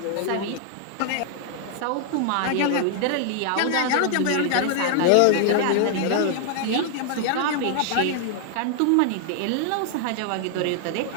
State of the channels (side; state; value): both; different; correlation 0.00